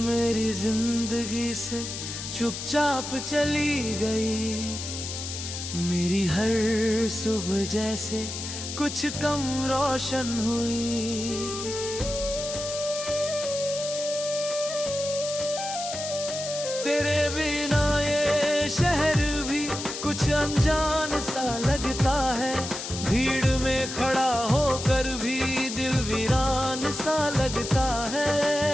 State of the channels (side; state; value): left; noise; hiss, 7 dB below the sound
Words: जिंदगी से चुपचाप चली गई, मेरी हर सुबह जैसे कुछ कम रोशन हुई। तेरे बिना ये शहर भी कुछ अनजान सा लगता है, भीड़ में खड़ा होकर भी दिल वीरान सा लगता है।